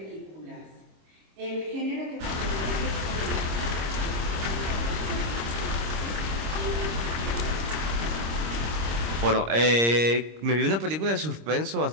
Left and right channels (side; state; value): left; late; 26 ms